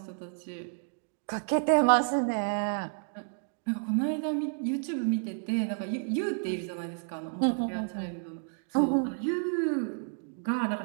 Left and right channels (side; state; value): left; silent; digital silence